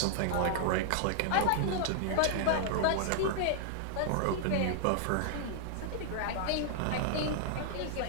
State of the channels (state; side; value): different; both; correlation -0.01